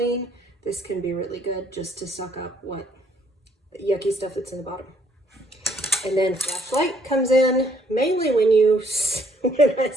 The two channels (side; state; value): both; normal; correlation 0.66